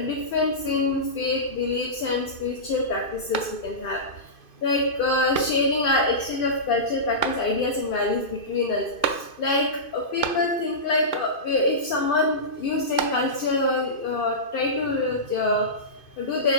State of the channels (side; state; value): right; late; 2.5 ms